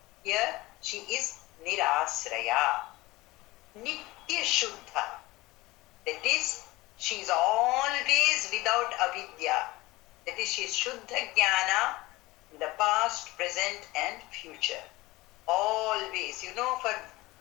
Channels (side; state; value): right; quieter; 20.3 dB